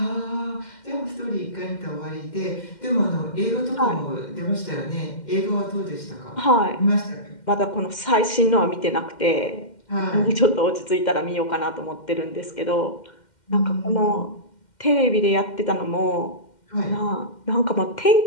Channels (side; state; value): right; late; 2.1 ms